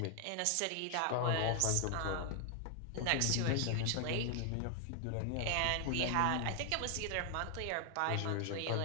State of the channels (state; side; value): different; both; correlation 0.00